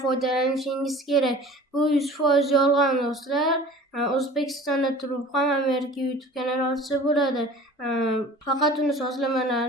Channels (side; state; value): both; normal; correlation 0.44